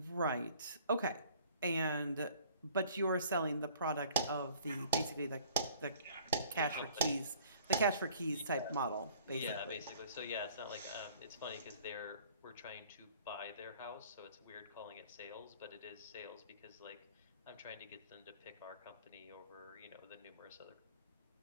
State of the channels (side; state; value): both; inverted; correlation -0.52